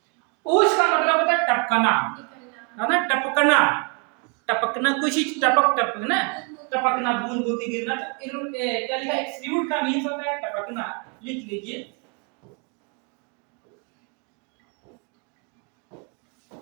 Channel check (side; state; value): left; quieter; 35.3 dB